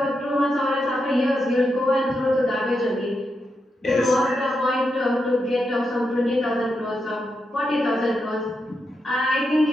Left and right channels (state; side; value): normal; both; correlation 0.85